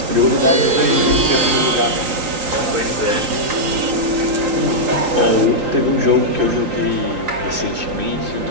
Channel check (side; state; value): left; late; 3.8 ms